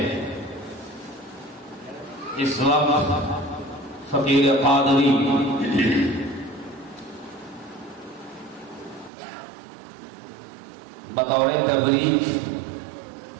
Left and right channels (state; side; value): drops out; left; at 9.1 s